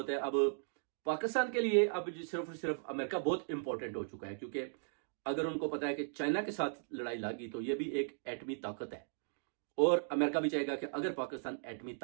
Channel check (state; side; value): silent; left; digital silence